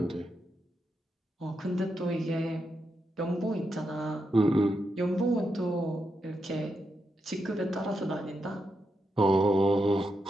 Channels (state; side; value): normal; both; correlation 0.84